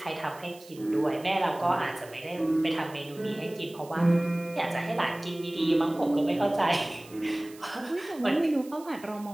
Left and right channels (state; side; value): noise; right; hiss, 22 dB below the sound